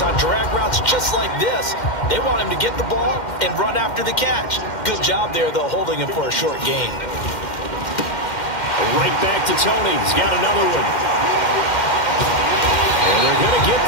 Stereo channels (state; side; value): late; right; 2.1 ms